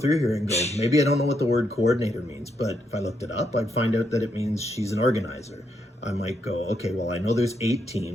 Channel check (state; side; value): normal; both; correlation 0.78